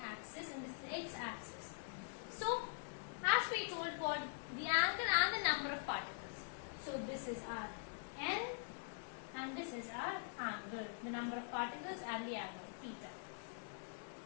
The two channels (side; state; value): right; silent; digital silence